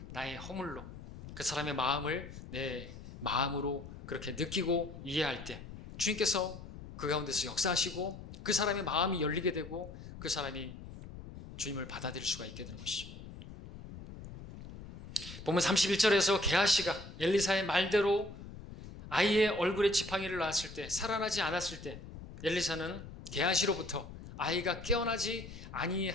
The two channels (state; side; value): noise; left; rumble, 13 dB below the sound